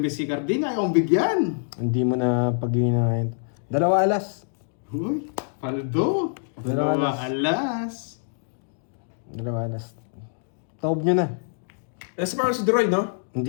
si Carding, ayaw kong bigyan. hindi mo na pag-iinahin. 2 alas. Uy, paldo. Dalawa Dalawa alas. alas. 2 alas. Taob nyo na. Nasa parang si Droy, no?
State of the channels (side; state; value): right; silent; digital silence